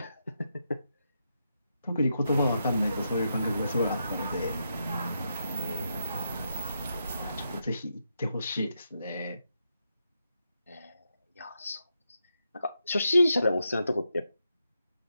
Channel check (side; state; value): both; inverted; correlation -0.84